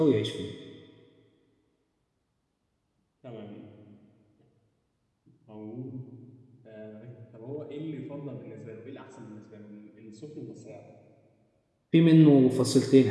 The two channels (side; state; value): both; identical; correlation 1.00